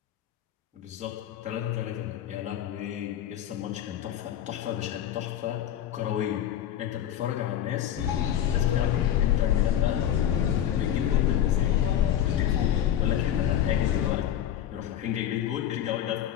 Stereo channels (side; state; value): right; quieter; 10.8 dB